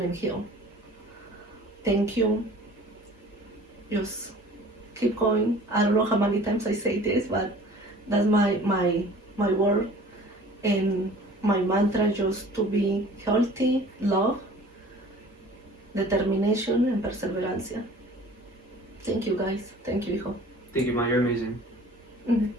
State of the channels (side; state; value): both; normal; correlation 0.47